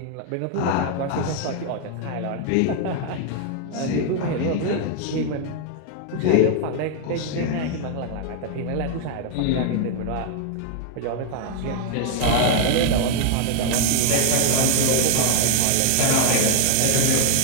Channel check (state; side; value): different; both; correlation 0.00